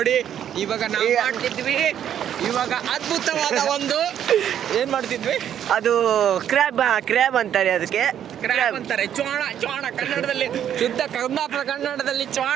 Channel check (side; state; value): left; quieter; 9.9 dB